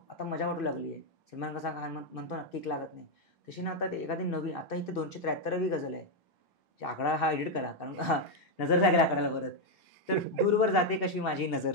आता मजा वाटू लागली आहे. सलमान कसा म्हणतो ना, किक लागत नाही, तशी ना आता ते एखादी नवीन, आता इथे 273वी गझल आहे. आकडा हा एडिट करा, कारण नजर लागेल आकड्याला परत. तर दूरवर जाते कशी माझी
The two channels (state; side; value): normal; both; correlation 0.02